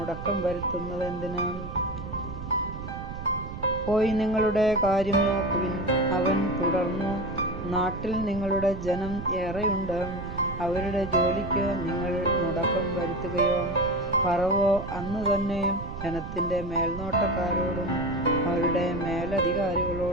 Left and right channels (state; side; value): noise; right; rumble, 9 dB below the sound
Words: വരുത്തുന്നത് എന്തിന്? പോയി നിങ്ങളുടെ കാര്യം നോക്കുവിൻ. അവൻ തുടർന്നു, നാട്ടിൽ നിങ്ങളുടെ ജനം ഏറെയുണ്ട്. അവരുടെ ജോലിക്ക് നിങ്ങൾ മുടക്കം വരുത്തുകയോ? ഫറവോ അന്ന് തന്നെ ജനത്തിൻ്റെ മേൽനോട്ടക്കാരോടും അവരുടെ